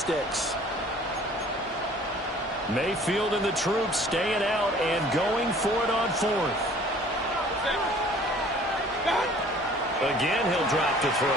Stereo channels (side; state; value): both; normal; correlation 0.52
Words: Mayfield and the troops staying out and going for it on 4th. Again, he'll drop to